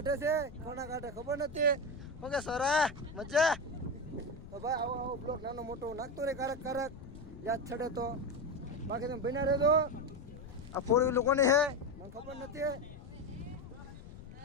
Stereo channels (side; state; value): left; noise; rumble, 15 dB below the sound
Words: છે, કોના કાઢે ખબર નથી. ઓકે સરા મજા. તો ભાઈ આવો બ્લોક નાનો મોટો નાખતો રહે કારક યાદ છડે તો. બાકી તમે બન્યા રહેજો. આ 4 વ્હીલર કોની છે મને ખબર નથી.